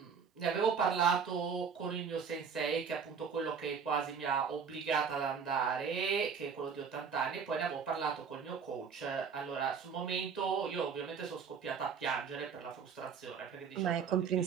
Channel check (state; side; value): quieter; left; 6.3 dB